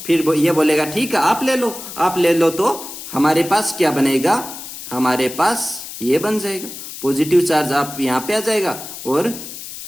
फिर ये बोलेगा ठीक है आप ले लो, तो हमारे पास क्या बनेगा, हमारे पास ये बन जाएगा पॉजिटिव चार्ज, आप यहां पे आ जाएगा, और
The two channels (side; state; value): left; noise; hiss, 11 dB below the sound